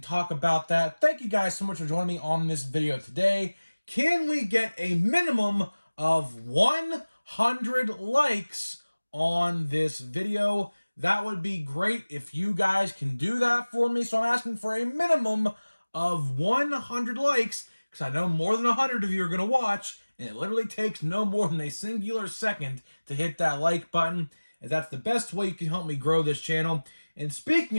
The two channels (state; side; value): inverted; both; correlation -1.00